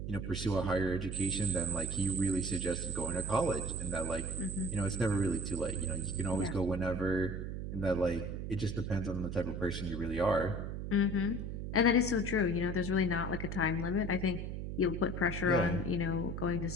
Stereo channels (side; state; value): right; noise; hum, 5 dB below the sound